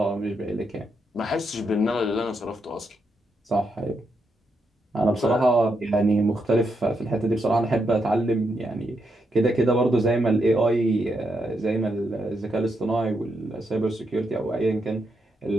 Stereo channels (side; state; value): both; normal; correlation 0.81